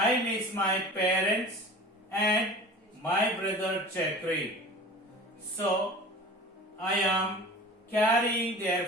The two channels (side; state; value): both; normal; correlation 0.39